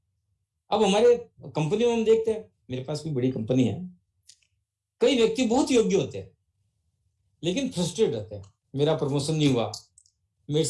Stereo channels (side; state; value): both; identical; correlation 1.00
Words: अब हमारे कंपनी में हम देखते हैं, मेरे पास भी बड़ी कंपनी है, कई व्यक्ति बहुत योग्य होते हैं, लेकिन फ्रस्ट्रेट रहते हैं। मेरा प्रमोशन नहीं हुआ, मेरे